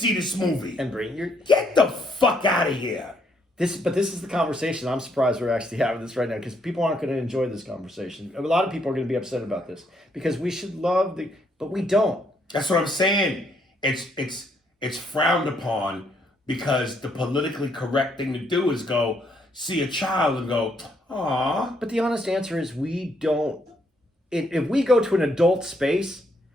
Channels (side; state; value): both; normal; correlation 0.72